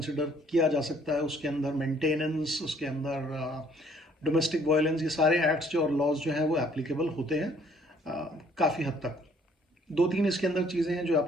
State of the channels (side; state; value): both; normal; correlation 0.61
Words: किया जा सकता है। उसके अंदर मेंटेनेंस, उसके अंदर डोमेस्टिक वायलेंस, ये सारे एक्ट्स जो और लॉज जो हैं वो एप्लीकेबल होते हैं काफ़ी हद तक। दो तीन इसके अंदर चीज़ें हैं जो